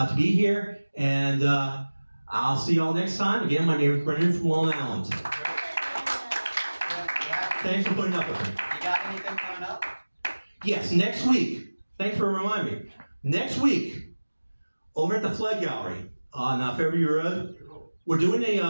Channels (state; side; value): inverted; both; correlation -1.00